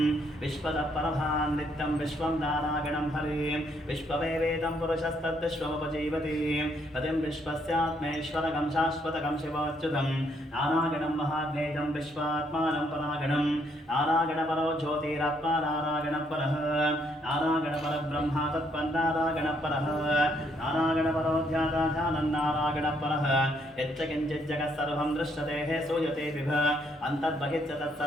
विश्वतः परभान् नित्यं विश्वं नारायणं हरिं विश्ववेवेदं पुरुषस्तद्विश्वमुपजीवति पतिं विश्वस्यात्मेश्वरकं शाश्वतकं शिवोच्युतं नारायणं महाज्ञेयं विश्वात्मानं परागणं नारायणपरो ज्योतिरात्मा नारायणपरः नारायणपरब्रह्मा तत्पन्नारायणपरः नारायणपरो ध्यानं नारायणपरः यच्च किञ्चित् जगत् सर्वं दृश्यते हे सूयते विभ अन्तर्बहिश्च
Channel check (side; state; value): both; normal; correlation 0.71